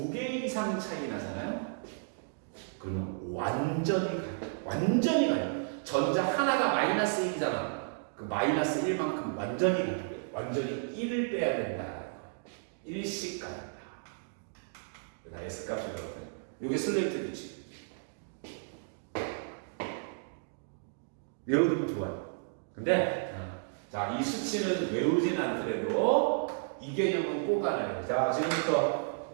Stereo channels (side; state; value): left; silent; digital silence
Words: 이상 차이 나잖아요? 그러면 완전히 가려. 완전히 가려. 전자 하나가 마이너스 1이잖아. 그 마이너스 1만큼 완전히 가려. 완전히 1을 빼야 된다. 1씩 가려. 나 S 값이 그렇거든. 이게 슬레이트 규칙. 외우면 좋아요. 근데 자, 이 수치는 외우진 않더라도 이 개념은 꼭 알아야 돼. 자,